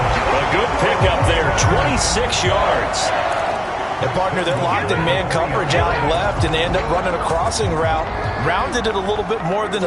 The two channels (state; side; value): identical; both; correlation 1.00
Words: good pickup there, 26 yards. And partner, they're locked in man coverage out left, and they end up running a crossing route. Rounded it a little bit more than